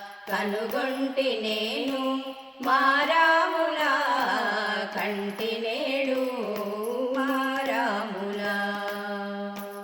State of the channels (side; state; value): both; identical; correlation 1.00